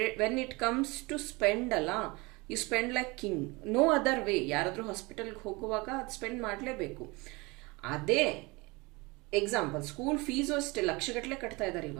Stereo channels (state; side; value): quieter; left; 25.2 dB